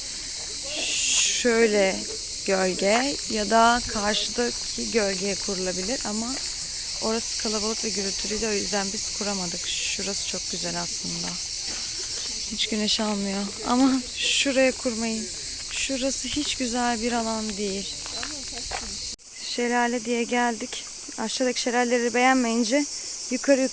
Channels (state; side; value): identical; both; correlation 1.00